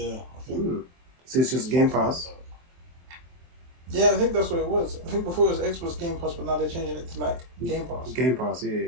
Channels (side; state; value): left; late; 23 ms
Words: I think. So it's just Game Pass? Yeah, I think that's what it was. I think before it was Xbox Game Pass, but now they're changing it to like Game Pass. Game Pass, yeah,